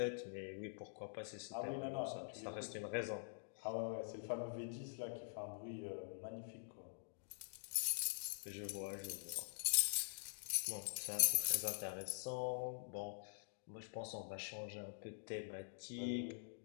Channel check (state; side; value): silent; right; digital silence